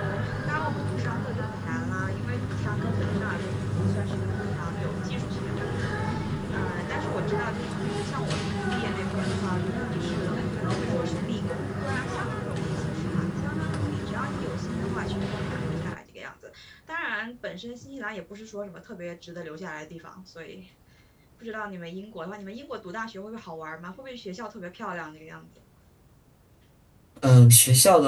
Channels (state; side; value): identical; both; correlation 1.00